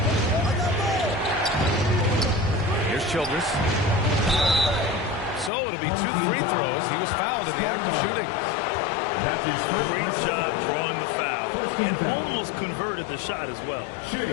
Here's Childress. So it'll be 2 free throws. He was fouled in the act of shooting. Great job drawing the foul. And almost converted the shot as well.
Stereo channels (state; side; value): drops out; right; at 5.5 s